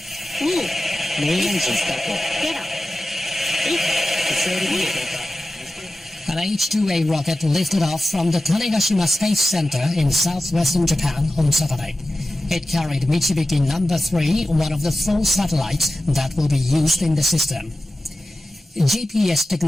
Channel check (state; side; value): normal; both; correlation 0.94